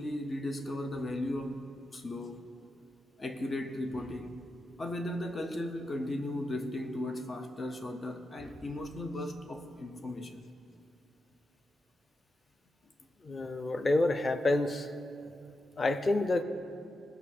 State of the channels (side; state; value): both; normal; correlation 0.88